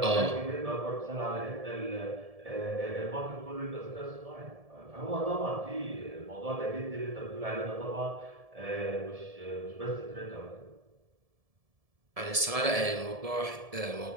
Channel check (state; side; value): late; left; 1.7 ms